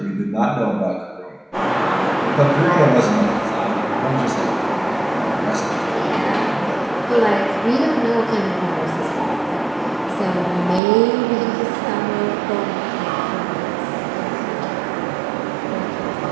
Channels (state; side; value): drops out; left; at 10.8 s